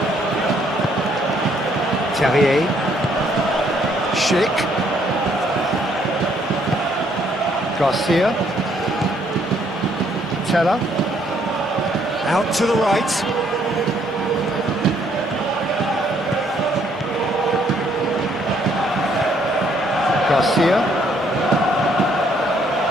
Terrier. Schick. Garcia. Teller. Out to the right. Garcia.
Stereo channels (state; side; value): normal; both; correlation 0.67